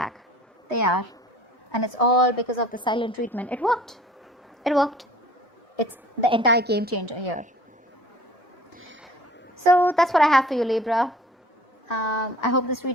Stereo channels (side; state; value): both; normal; correlation 0.48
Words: They are. And it's all because of the silent treatment. It worked. It worked. It's the entire game changer here. So that's what I have for you, Libra. I hope this